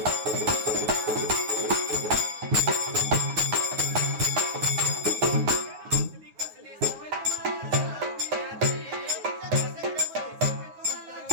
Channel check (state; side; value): late; left; 9.4 ms